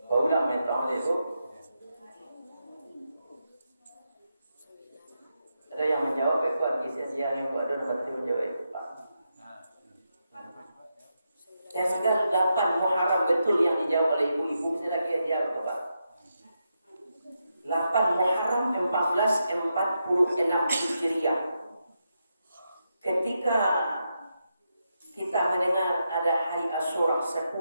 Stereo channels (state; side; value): inverted; both; correlation -0.85